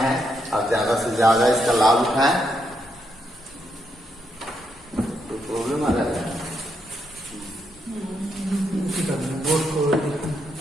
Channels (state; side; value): normal; both; correlation 0.79